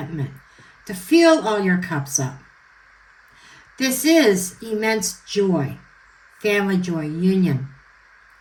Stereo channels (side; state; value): both; identical; correlation 1.00